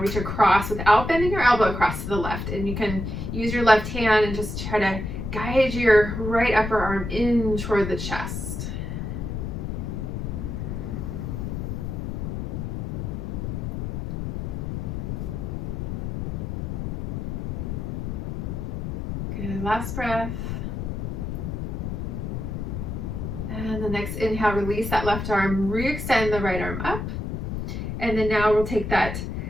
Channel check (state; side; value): noise; left; rumble, 4 dB below the sound